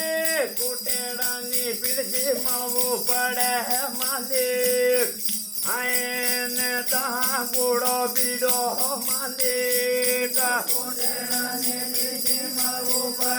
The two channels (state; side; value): identical; both; correlation 1.00